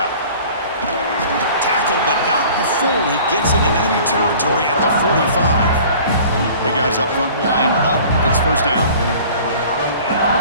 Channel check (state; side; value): inverted; both; correlation -0.47